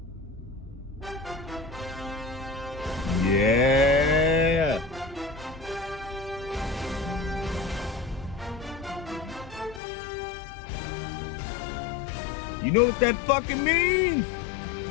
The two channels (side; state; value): right; drops out; at 9.8 s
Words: Yeah. You know what that fucking means?